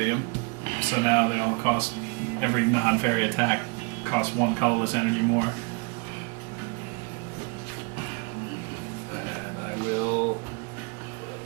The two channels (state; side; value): quieter; left; 32.6 dB